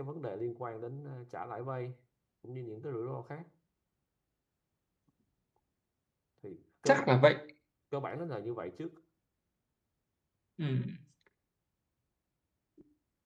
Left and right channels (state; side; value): identical; both; correlation 1.00